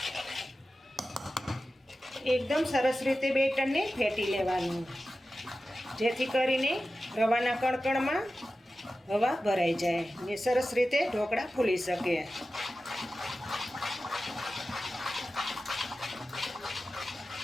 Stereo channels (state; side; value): normal; both; correlation 0.94